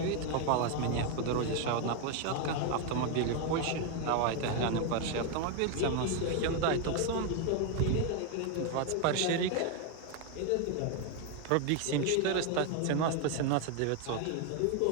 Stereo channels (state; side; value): different; both; correlation 0.01